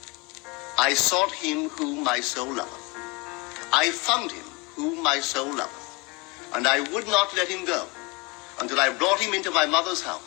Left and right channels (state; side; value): quieter; right; 27.3 dB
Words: I sought him whom my soul loveth. I found him whom my soul loveth, and I would not let him go until I brought him into my mother's